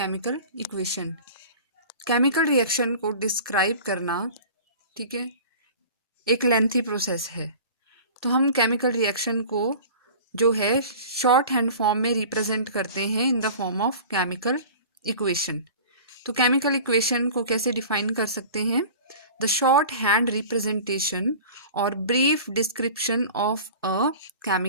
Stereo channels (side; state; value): both; inverted; correlation -0.40